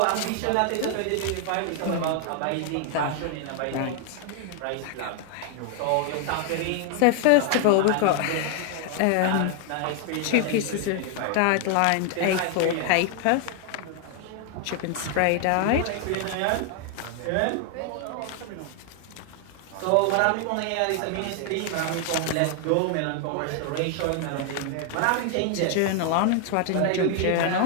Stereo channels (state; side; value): different; both; correlation 0.00